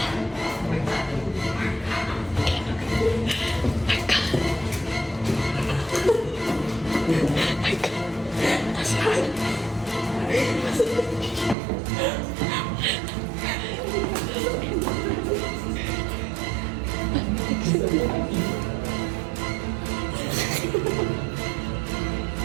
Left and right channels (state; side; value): drops out; left; at 11.6 s